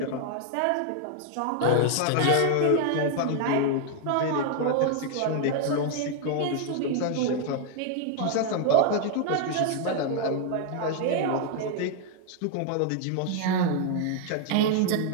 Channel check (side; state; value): both; different; correlation 0.00